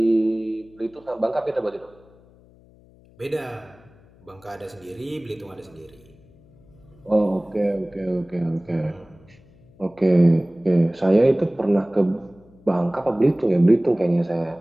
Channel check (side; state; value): left; noise; hum, 27 dB below the sound